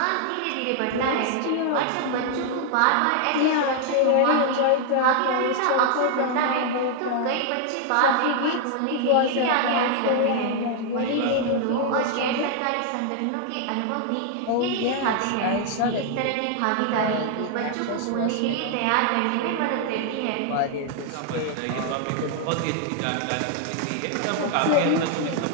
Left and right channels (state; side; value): different; both; correlation 0.00